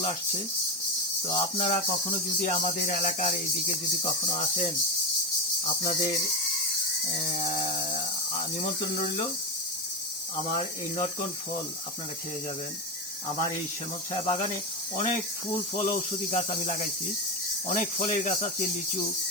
আসছে। তো আপনারা কখনো যদি আমাদের এলাকার এইদিকে যদি কখনো আসেন, আপনাদের নিমন্ত্রণ রইল। আমার এই নটকন ফল আপনারা খেয়ে যাবেন। আমার এই শ্যামল ছায়া বাগানে অনেক ফুল ফল ঔষধি গাছ আমি লাগাইছি, অনেক ফলের গাছ আছে, লিচু,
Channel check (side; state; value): both; normal; correlation 0.11